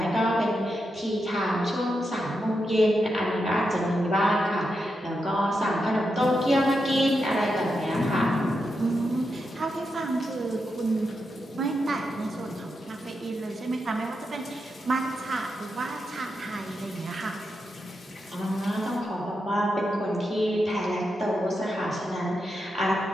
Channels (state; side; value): normal; both; correlation 0.86